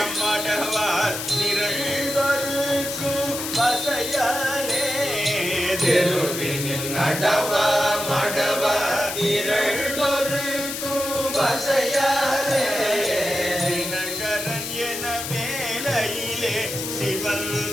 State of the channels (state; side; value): noise; left; hiss, 5 dB below the sound